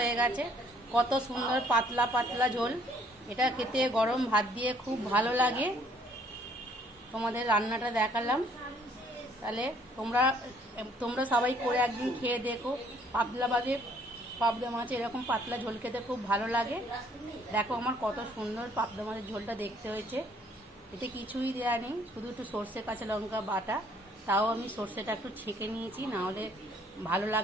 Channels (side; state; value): both; normal; correlation 0.62